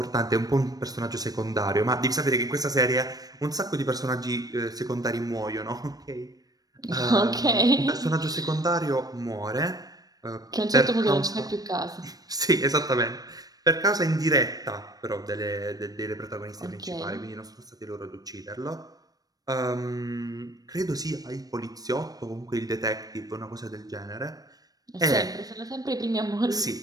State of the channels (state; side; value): late; left; 0.18 ms